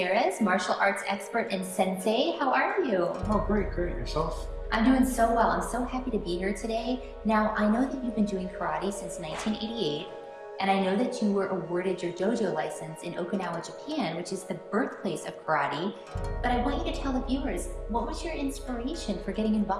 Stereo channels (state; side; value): identical; both; correlation 1.00